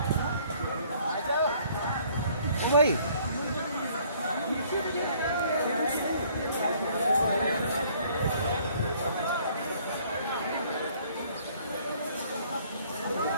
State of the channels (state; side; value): inverted; both; correlation -0.60